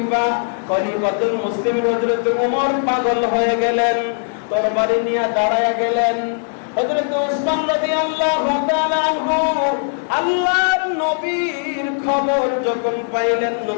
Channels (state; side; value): silent; right; digital silence